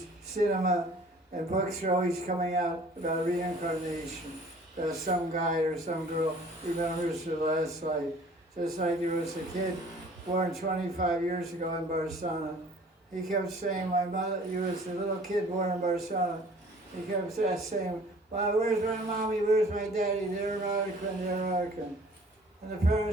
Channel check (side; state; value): both; normal; correlation 0.51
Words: cinema, and books are always coming out about reincarnation. About some guy or some girl remembers their last life. Just like there was a kid born 25 years ago in Barcelona. He kept saying, my mother, he was a little kid born in Barcelona. He kept saying, well, where's my mommy, where's my daddy? They're American, they're American. And the